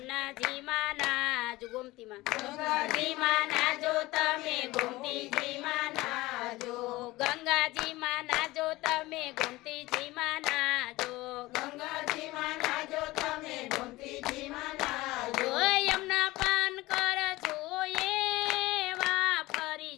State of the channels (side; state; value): right; quieter; 19.5 dB